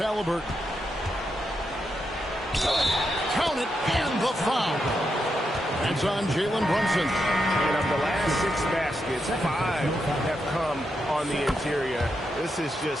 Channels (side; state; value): both; normal; correlation 0.84